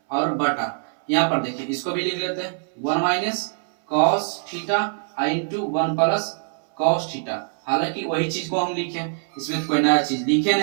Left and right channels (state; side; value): silent; left; 63 dB below the other